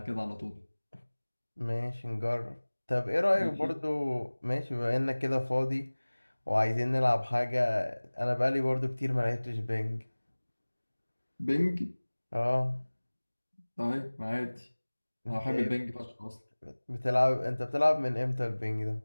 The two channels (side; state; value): both; inverted; correlation -1.00